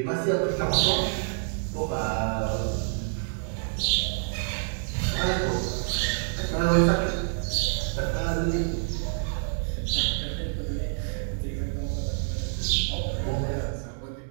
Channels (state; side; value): silent; left; 60 dB below the other